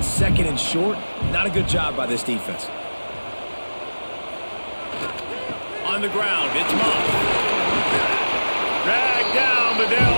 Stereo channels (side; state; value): both; inverted; correlation -1.00